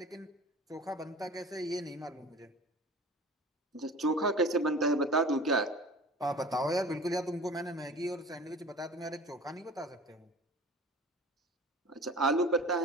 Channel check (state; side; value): normal; both; correlation 0.41